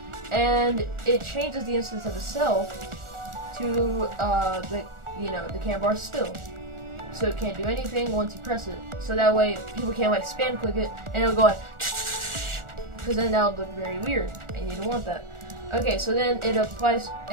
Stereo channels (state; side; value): late; left; 1.4 ms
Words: and it changes the instance of itself to the cam bar still. So it can't do anything once you press it. So that way people can't like spam click it and it'll go like, because then that would look very weird and you don't want that. Okay, so then it applies,